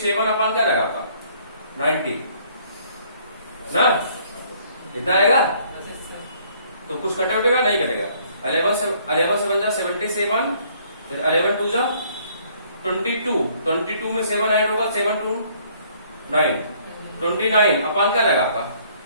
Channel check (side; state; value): both; inverted; correlation -0.62